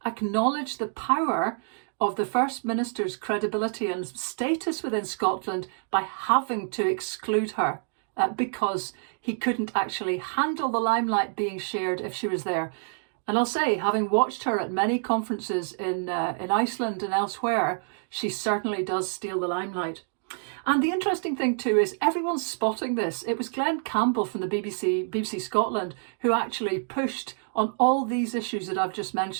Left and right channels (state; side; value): silent; left; digital silence